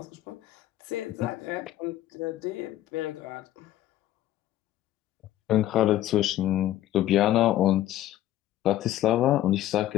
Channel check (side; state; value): right; quieter; 13.6 dB